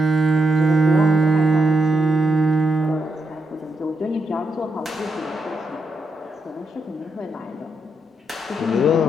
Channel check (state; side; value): normal; both; correlation 0.82